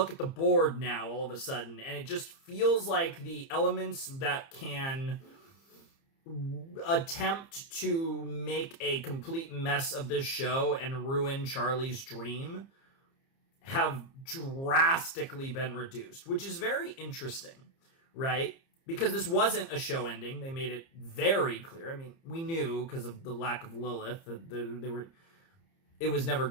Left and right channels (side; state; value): right; late; 30 ms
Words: at the board now all of a sudden, and it just feels like the elements that can attempt to make a complete mess of this show and ruin Charlie's dream have drastically been reduced, which is very interesting, right? Because this wasn't a show ending. They made it very clear. I mean, we knew because of the lack of Lilith that it was never